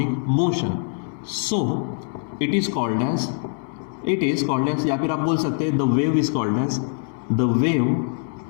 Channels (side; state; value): right; silent; 59 dB below the other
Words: motion, so it is called as, या फिर आप बोल सकते हैं the wave is called